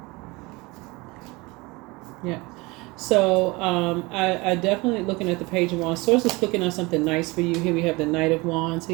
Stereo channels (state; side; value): quieter; left; 24.0 dB